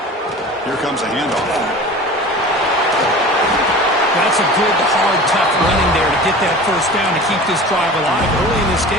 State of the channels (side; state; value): both; normal; correlation 0.38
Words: Here comes a handoff. That's a good, hard, tough running there to get that first down to keep this drive alive. Early in this